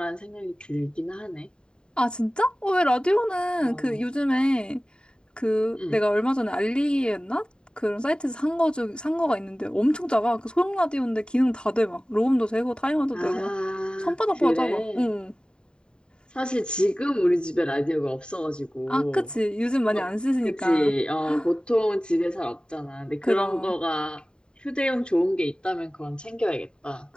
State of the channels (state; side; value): late; right; 0.049 ms